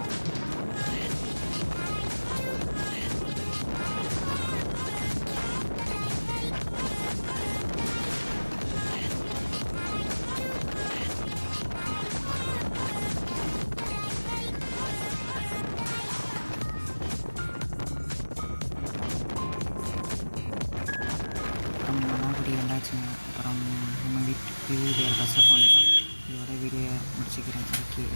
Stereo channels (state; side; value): inverted; both; correlation -1.00